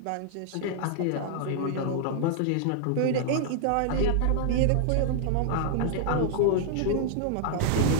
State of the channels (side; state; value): both; different; correlation -0.01